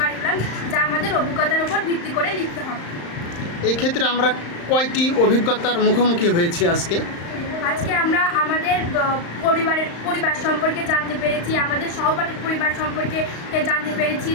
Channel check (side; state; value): right; late; 35 ms